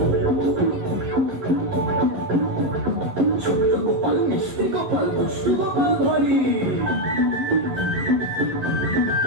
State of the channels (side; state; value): left; late; 11 ms